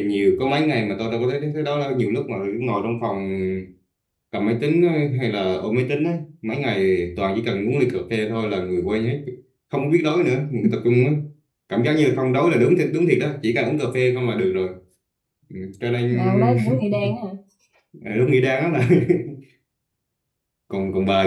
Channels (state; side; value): identical; both; correlation 1.00